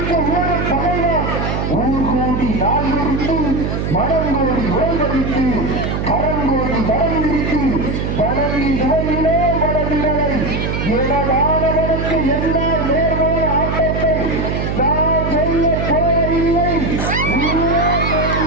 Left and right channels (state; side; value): noise; right; hum, 1 dB below the sound